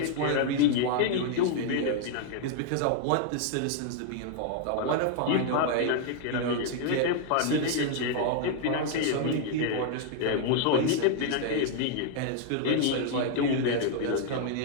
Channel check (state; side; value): different; both; correlation 0.00